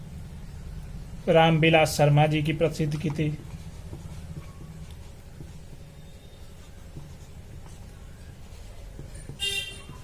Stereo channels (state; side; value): identical; both; correlation 1.00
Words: रामविलास शर्मा जी की प्रसिद्ध कृति